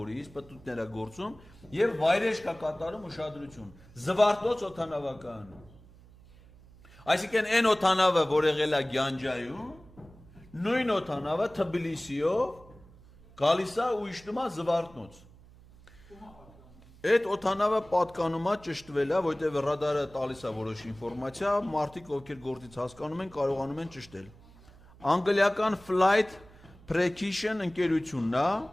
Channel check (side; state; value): right; noise; hum, 23 dB below the sound